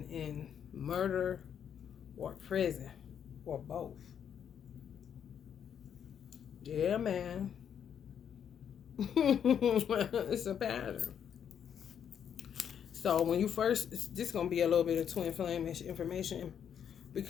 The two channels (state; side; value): quieter; right; 8.5 dB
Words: in murder or prison or both. Yeah, man. It's a pattern. So when you first, this is going to be a little bit of twin flame information